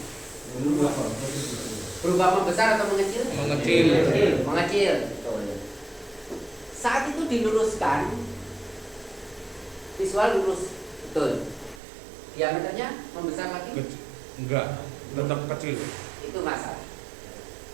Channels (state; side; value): drops out; left; at 11.8 s